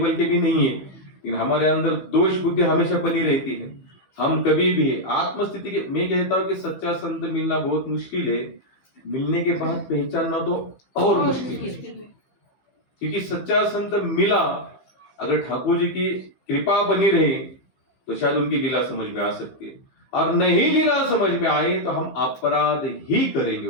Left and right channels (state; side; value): late; right; 15 ms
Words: के भी नहीं है, लेकिन हमारे अंदर दोष बुद्धि हमेशा बनी रहती है। हम कभी भी आत्मस्थिति के, मैं कहता हूँ कि सच्चा संत मिलना बहुत मुश्किल है, मिलने के बाद पहचानना तो और मुश्किल है। क्योंकि सच्चा संत मिला, अगर ठाकुर जी की कृपा बनी रही तो शायद उनकी लीला समझ में आ सकती है, और नहीं लीला समझ में आई तो हम अपराध ही करेंगे